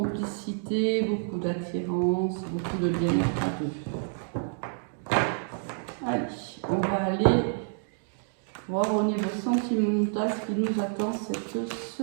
beaucoup d'attirance, beaucoup de bien-être à deux. Allez, on va aller voir au niveau sentimental ce qui nous attend cette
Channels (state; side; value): silent; left; digital silence